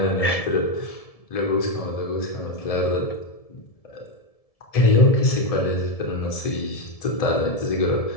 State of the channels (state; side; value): late; right; 1.7 ms